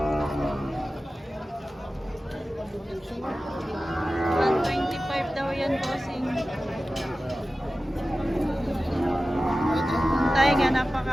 daw yan, bossing. Tayo nga,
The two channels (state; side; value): normal; both; correlation 0.95